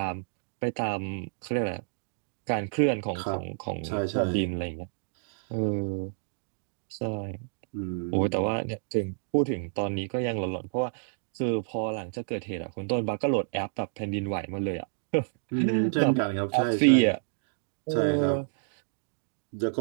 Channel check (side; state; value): left; silent; digital silence